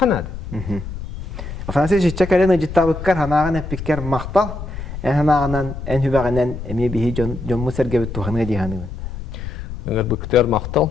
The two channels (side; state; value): left; noise; rumble, 9 dB below the sound